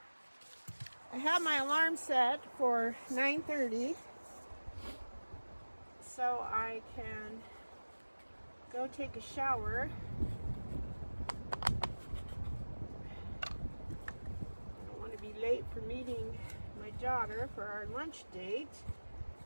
I have my alarm set for 9:30 so I can go take a shower. I don't want to be late for meeting my daughter for our lunch date.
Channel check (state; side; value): inverted; both; correlation -1.00